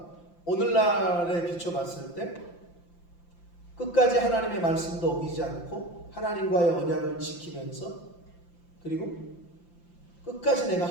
오늘날에 비춰봤을 때 끝까지 하나님의 말씀도 어기지 않고 하나님과의 언약을 지키면서, 그리고 끝까지 내가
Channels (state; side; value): late; right; 5.8 ms